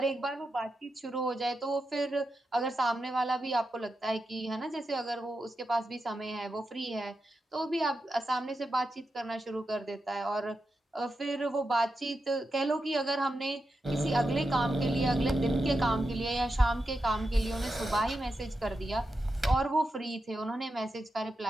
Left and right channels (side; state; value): both; normal; correlation 0.88